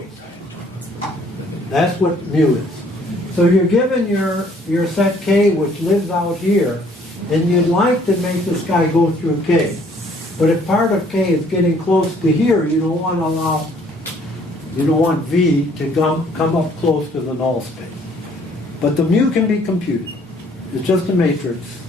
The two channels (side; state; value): both; normal; correlation 0.61